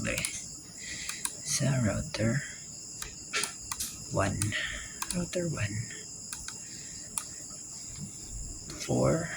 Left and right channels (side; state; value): both; identical; correlation 1.00